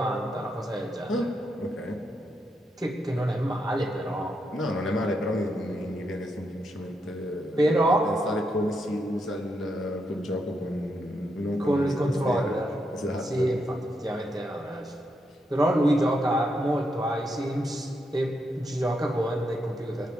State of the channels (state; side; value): normal; both; correlation 0.81